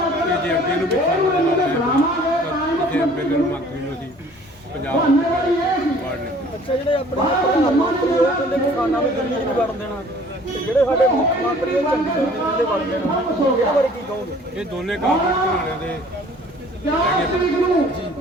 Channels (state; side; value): normal; both; correlation 0.52